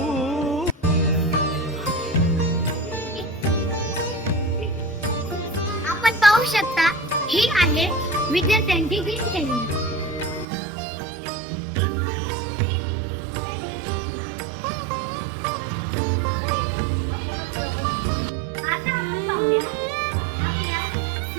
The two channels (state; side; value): drops out; left; at 10.5 s